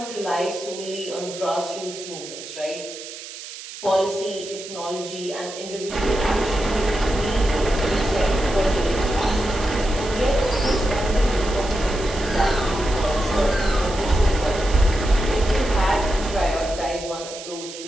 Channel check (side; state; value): right; noise; hiss, 12 dB below the sound